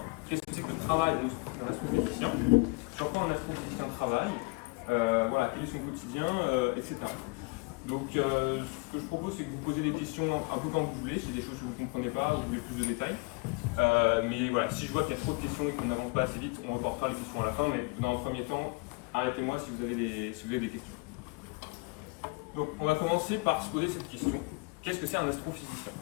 Qu'est-ce que c'est que le travail d'un astrophysicien? Sur quoi un astrophysicien travaille? Voilà, quel est son quotidien, etc. Donc, ce que je propose, c'est que vous posez des questions un peu quand vous voulez, si des choses que vous ne comprenez pas, vous voulez plus de détails. Mais voilà, si je vois qu'il y a trop de questions et qu'on n'avance pas assez vite, on reportera les questions à la fin. Mais dans le premier temps, arrêtez-moi si vous avez des questions. Donc, on va commencer par se poser cette question. Qu'est-ce que c'est un astrophysicien?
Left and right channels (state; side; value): quieter; right; 28.8 dB